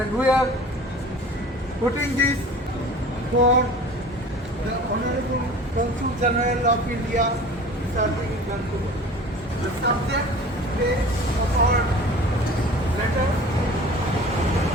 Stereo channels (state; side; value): normal; both; correlation 0.42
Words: we are putting this for the Honorable Consul General of India serving in Vancouver. The subject today of our letter: